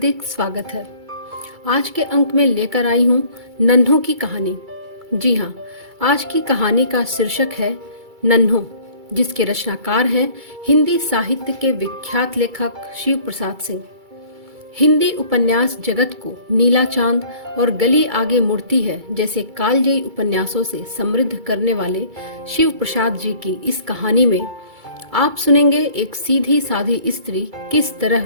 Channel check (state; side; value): late; left; 2.3 ms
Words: स्वागत है। आज के अंक में लेकर आई हूँ नन्हों की कहानी। जी हाँ, आज की कहानी का शीर्षक है नन्हों, जिसके रचनाकार हैं हिंदी साहित्य के विख्यात लेखक शिव प्रसाद सिंह। हिंदी उपन्यास जगत को नीला चांद और गली आगे मुड़ती है जैसे कालजयी उपन्यासों से समृद्ध करने वाले शिव प्रसाद जी की इस कहानी में आप सुनेंगे एक सीधी साधी स्त्री किस तरह